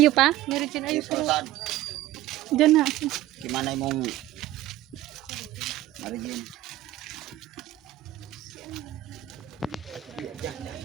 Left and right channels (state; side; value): quieter; left; 14.7 dB